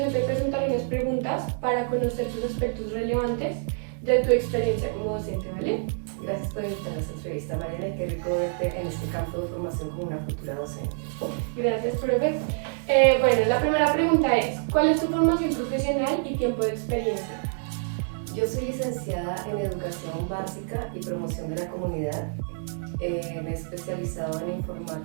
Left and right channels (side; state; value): left; silent; digital silence